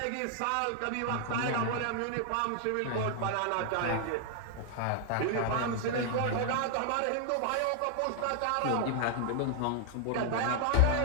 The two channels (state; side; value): different; both; correlation 0.00